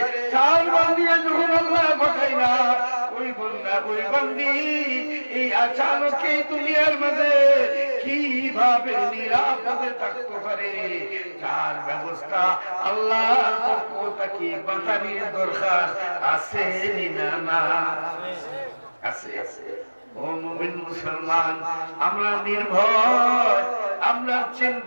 চাল বান্দিয়ে যখন আল্লাহ পাঠাই না, ওই বান্দা ওই বান্দি এই আচানক এই দুনিয়ার মাঝে কিভাবে নিরাপদে থাকতে পারে তার ব্যবস্থা আল্লাহর পক্ষ থেকে বাতানির দরকার আছে না? না আছে। ও মুমিন মুসলমান, আমরা নির্ভয়, আমরা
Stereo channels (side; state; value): both; inverted; correlation -1.00